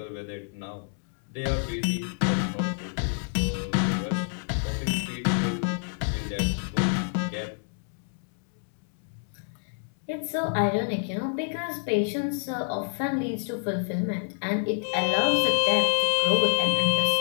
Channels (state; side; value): silent; right; 60 dB below the other